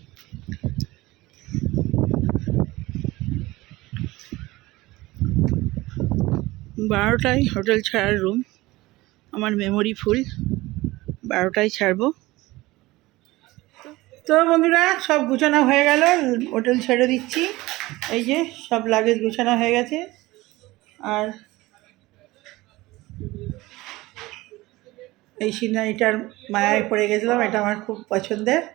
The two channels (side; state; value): left; quieter; 19.6 dB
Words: বারোটায় হোটেল ছাড়ার রুম, আমার মেমোরি ফুল। 12টায় ছাড়বো। তো বন্ধুরা, সব গুছানো হয়ে গেল, হোটেল ছেড়ে দিচ্ছি। এই যে সব লাগেজ গুছানো হয়ে গেছে। আর এই সিনারিটার মায়ায় পড়ে গেছিলাম, এটা আমার খুব পছন্দের।